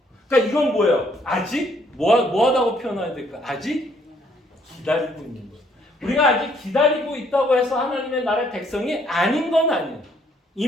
그러니까 이건 뭐예요? 아직? 뭐하다고 표현해야 될까? 아직 기다리고 있는 거예요. 우리가 아직 기다리고 있다고 해서 하나님의 나라의 백성이 아닌 건 아니에요.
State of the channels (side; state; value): both; normal; correlation 0.66